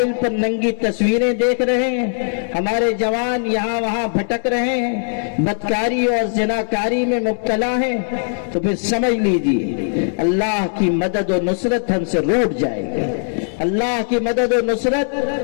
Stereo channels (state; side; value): silent; right; 66 dB below the other